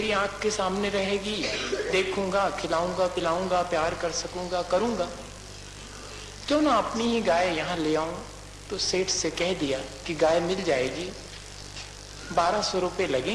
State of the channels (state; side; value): identical; both; correlation 1.00